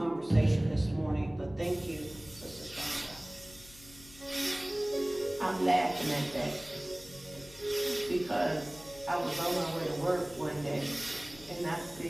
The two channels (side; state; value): left; noise; hum, 21 dB below the sound